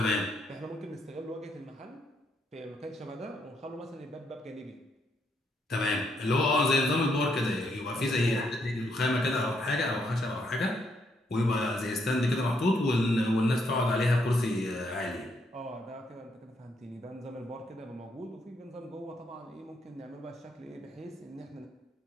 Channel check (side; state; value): both; normal; correlation 0.75